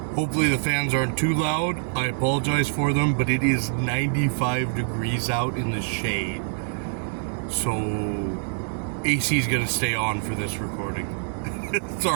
Hopefully the fans aren't too loud. I apologize for them, but it is 95 degrees out in the shade. So AC is going to stay on for this recording.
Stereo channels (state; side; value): silent; left; digital silence